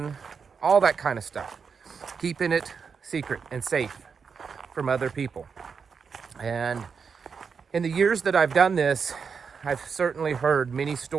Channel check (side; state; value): left; quieter; 5.9 dB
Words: all that kind of stuff. Keeping it secret and safe from other people. And in the years that I've done this, I've certainly heard many